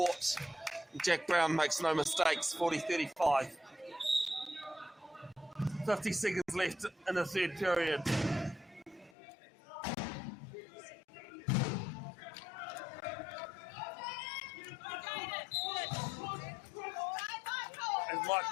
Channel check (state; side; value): drops out; right; at 9.2 s